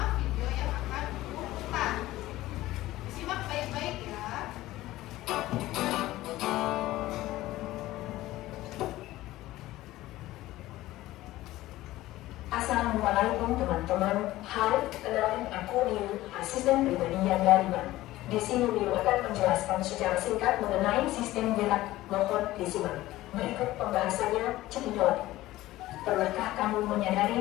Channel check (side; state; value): right; quieter; 16.5 dB